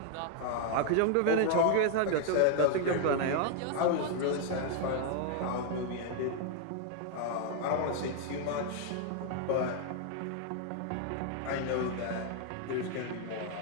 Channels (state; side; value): different; both; correlation 0.00